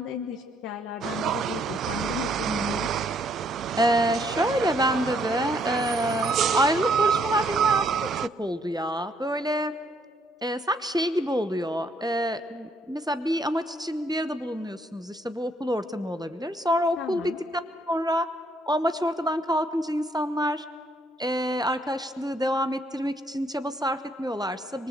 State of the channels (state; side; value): normal; both; correlation 0.69